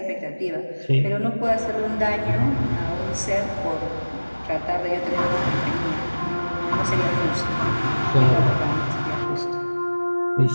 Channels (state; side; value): inverted; both; correlation -1.00